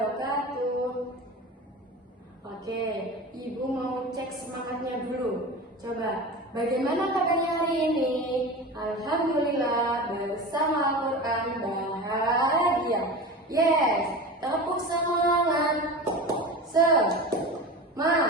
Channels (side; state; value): both; normal; correlation 0.31